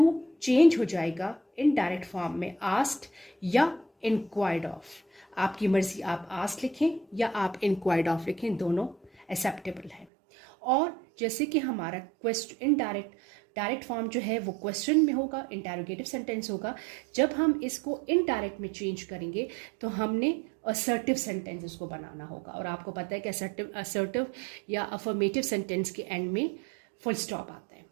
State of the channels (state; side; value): drops out; left; at 10.1 s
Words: चेंज हो जाएगा इनडायरेक्ट फॉर्म में आस्क्ड या इंक्वायर्ड ऑफ. आपकी मर्जी, आप आस्क्ड लिखें या आप इंक्वायर्ड ऑफ लिखें, दोनों एक्सेप्टेबल है. और जैसे कि हमारा क्वेश्चन डायरेक्ट फॉर्म जो है वो क्वेश्चन में होगा, इंटरोगेटिव सेंटेंस होगा. जब हम इसको इनडायरेक्ट में चेंज करेंगे तो हमने असर्टिव सेंटेंस इसको बनाना होगा. और आपको पता है कि असर्टिव या अफर्मेटिव सेंटेंस के एंड में फुल स्टॉप आता है.